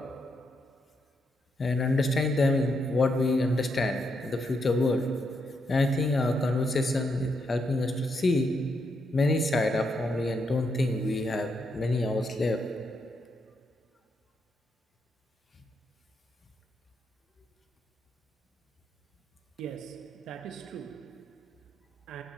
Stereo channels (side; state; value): both; normal; correlation 0.80